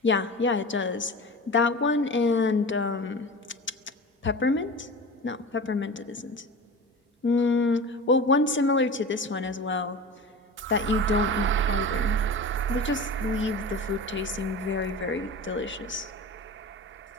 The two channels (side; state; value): both; normal; correlation 0.32